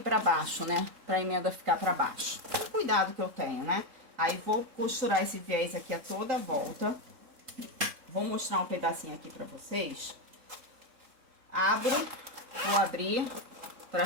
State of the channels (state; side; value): late; left; 3.6 ms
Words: baixo, né? Pra emenda ficar pra baixo. Cuidado que eu tenho, né? Aí vou costurar esse viés aqui a toda a volta. Vou mostrar um pedacinho aqui pra vocês. Vou abrir pra